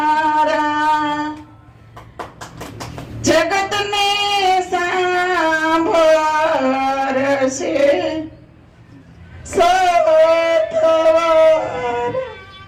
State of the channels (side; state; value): both; identical; correlation 1.00